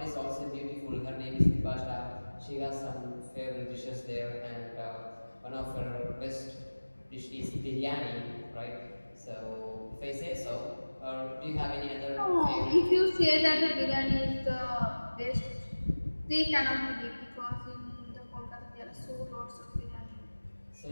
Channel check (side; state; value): both; inverted; correlation -1.00